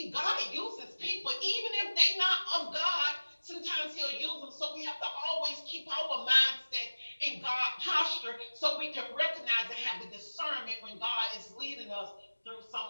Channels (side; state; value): both; inverted; correlation -1.00